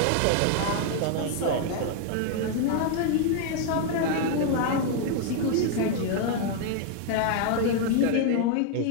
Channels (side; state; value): both; different; correlation 0.00